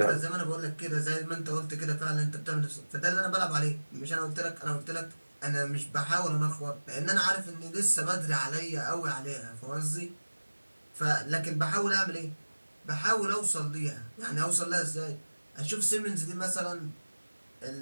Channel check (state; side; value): inverted; both; correlation -1.00